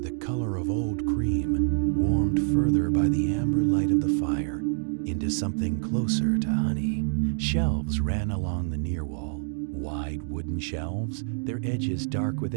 the color of old cream, warmed further by the amber light of the fire into something closer to honey. Shelves ran along the near wall, wide wooden shelves, their edges dark with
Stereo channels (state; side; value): silent; left; digital silence